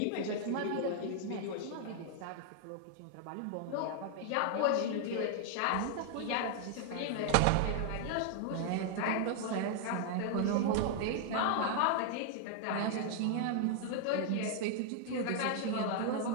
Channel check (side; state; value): both; different; correlation 0.00